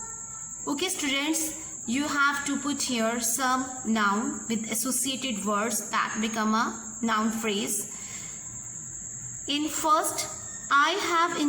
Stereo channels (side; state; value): both; identical; correlation 1.00